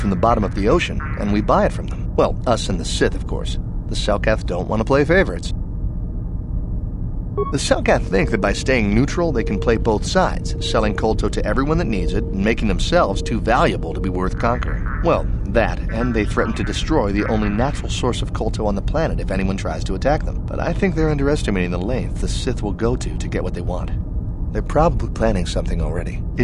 the bottom of the ocean, and we buy it from them. Well, us and the Sith, of course. The Selkath don't want to play favorites. The Selkath think that by staying neutral, they can play both sides, selling Kolto to everyone that needs it, and making themselves too valuable to be worth conquering. Well, that, and they threaten to destroy the only natural source of Kolto on the planet if anyone tries to attack them. But I think they're underestimating the length the Sith will go to get what they want. They're probably planning something already.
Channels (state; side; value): identical; both; correlation 1.00